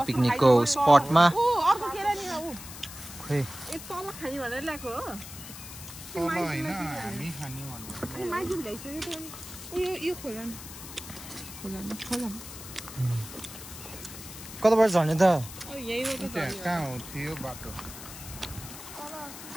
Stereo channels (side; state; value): left; noise; hiss, 13 dB below the sound